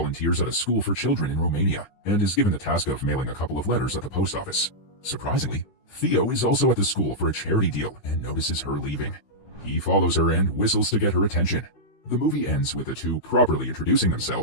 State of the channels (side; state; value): right; late; 15 ms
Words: at a school for children in Romania, and is given the task of mailing a couple of letters at the post office. Surprisingly, Theo is also at the school for a charity deal and notices her leaving. He follows her and whistles to get her attention. The movie ends with the two properly introducing